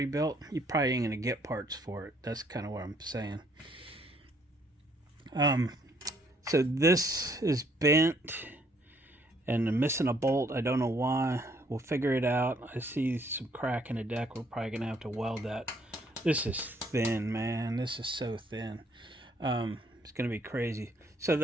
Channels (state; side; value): normal; both; correlation 0.66